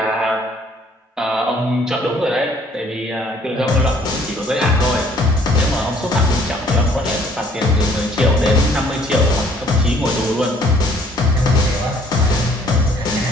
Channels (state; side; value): normal; both; correlation 0.60